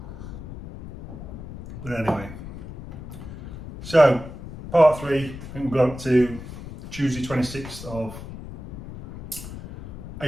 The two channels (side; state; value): left; noise; rumble, 12 dB below the sound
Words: But anyway, so part 3, I think we'll go up to Tuesday 26th of